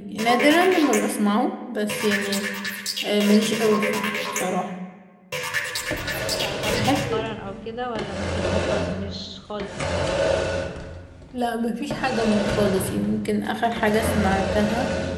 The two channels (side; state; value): both; identical; correlation 1.00